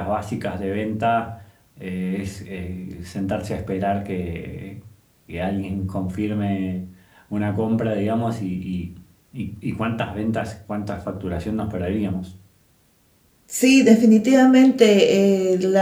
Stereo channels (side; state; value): both; identical; correlation 1.00